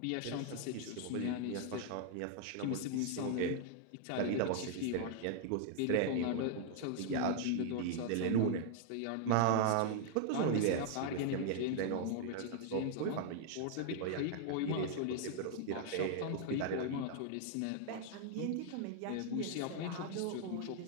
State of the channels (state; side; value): different; both; correlation 0.00